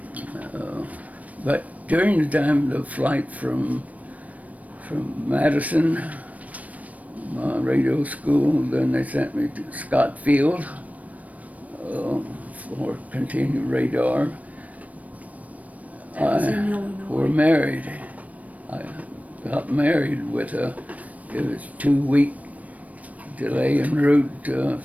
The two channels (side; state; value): left; late; 0.070 ms